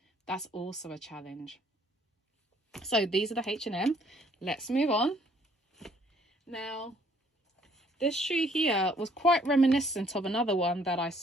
that's also a challenge. So these are the H&M. Let's move on. Now, this shoe here was quite reminiscent of another one that I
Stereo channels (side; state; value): both; normal; correlation 0.63